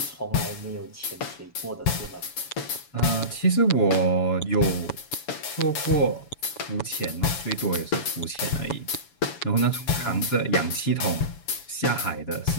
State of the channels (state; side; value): late; right; 7.1 ms